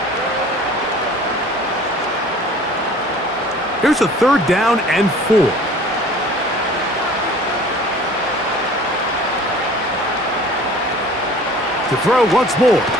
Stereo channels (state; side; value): normal; both; correlation 0.47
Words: Here's a 3rd down and 4. To throw once more.